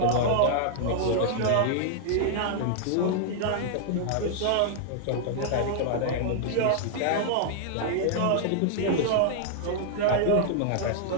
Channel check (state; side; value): different; both; correlation 0.00